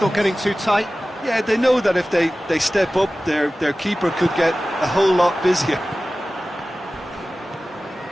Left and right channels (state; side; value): normal; both; correlation 0.96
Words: not getting too tight? Yeah, they know that if they step up, their keeper could get a whole lot busier.